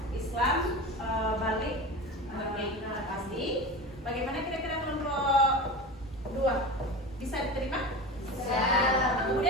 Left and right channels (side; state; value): both; normal; correlation 0.29